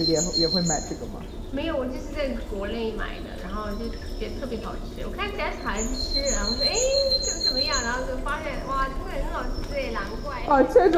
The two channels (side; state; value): both; identical; correlation 1.00